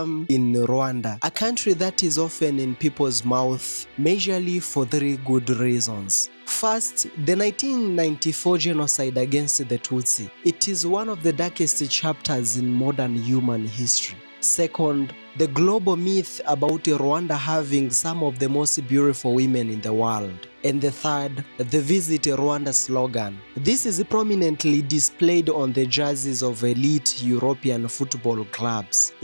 in Rwanda, a country that is often in people's mouth, majorly for three good reasons. First, the 1994 genocide against the Tutsi. It is one of the darkest chapters in modern human history. Second, the global myth about Rwanda having some of the most beautiful women in the world. And the third, the Visit Rwanda slogan. This is prominently displayed on the jerseys of elite European football clubs,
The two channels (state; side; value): inverted; both; correlation -1.00